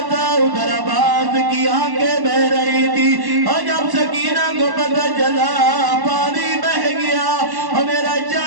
تھا، ادھر عباس کی آنکھیں بہ رہی تھی، اور جب سکینہ کو پتہ چلا پانی بہ گیا اور میرا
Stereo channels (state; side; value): late; left; 1.1 ms